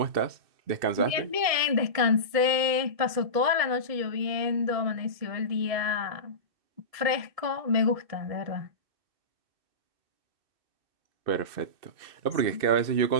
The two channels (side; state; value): left; late; 1.7 ms